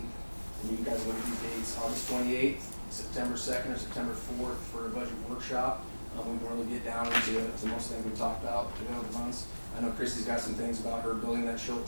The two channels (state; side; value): inverted; both; correlation -1.00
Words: and you guys look at these dates, August 28th, September 2nd, or September 4th for a budget workshop. We can really get down into most things we talked about through the months. I know Christy's got some things about her building that she'll